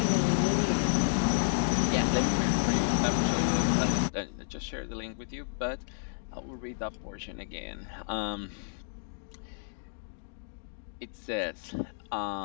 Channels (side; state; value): right; silent; digital silence